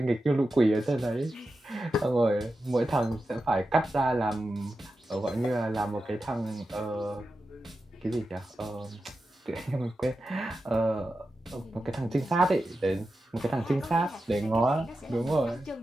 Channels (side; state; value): both; normal; correlation 0.91